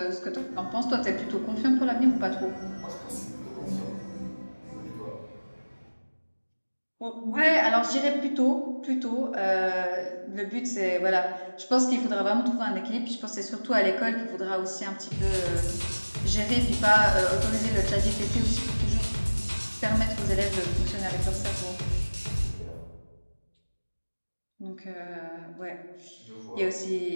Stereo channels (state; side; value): inverted; both; correlation -1.00